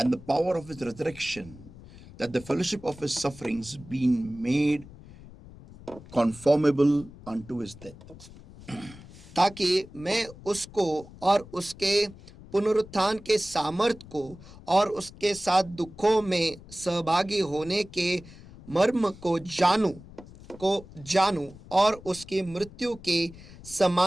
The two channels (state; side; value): noise; left; rumble, 19 dB below the sound